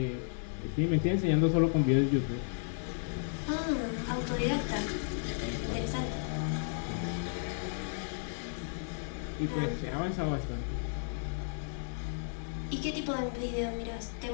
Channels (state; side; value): silent; right; digital silence